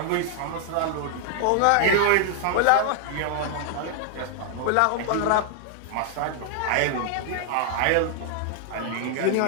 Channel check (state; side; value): different; both; correlation 0.00